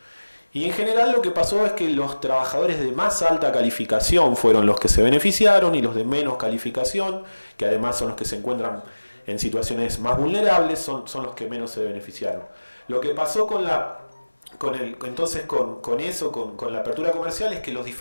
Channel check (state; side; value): inverted; both; correlation -1.00